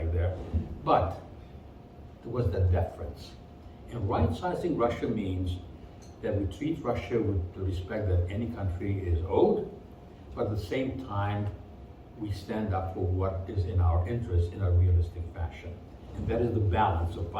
there, but there was that deference. And right-sizing Russia means that we treat Russia with the respect that any country is owed, but at the same time, we stand up for what is in our interest in a realistic fashion. And that is the balance of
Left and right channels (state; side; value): identical; both; correlation 1.00